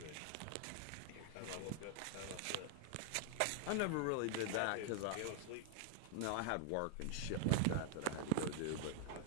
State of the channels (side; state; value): both; different; correlation -0.01